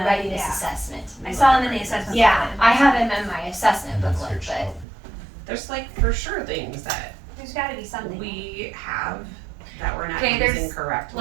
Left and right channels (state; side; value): drops out; left; at 4.9 s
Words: readiness yeah. assessment. I saw them in the assessment. Yeah, booklet. I have them in my assessment And then booklet, search but topic. There's like for sure things that There's gotta be something. we have that we're not Okay, there's, using correctly